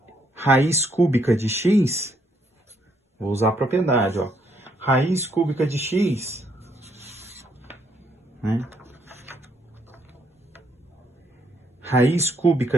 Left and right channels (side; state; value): both; normal; correlation 0.72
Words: raiz cúbica de x, vou usar a propriedade, ó, raiz cúbica de x, né? Raiz